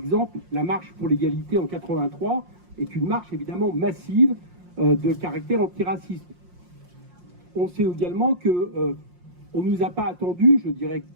la marche pour l'égalité en 83 est une marche évidemment massive de caractère antiraciste. On sait également que on ne nous a pas attendu, je dirais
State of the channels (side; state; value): left; late; 5.6 ms